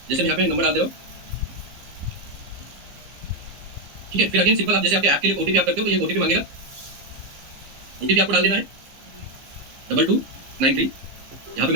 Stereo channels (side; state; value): left; late; 15 ms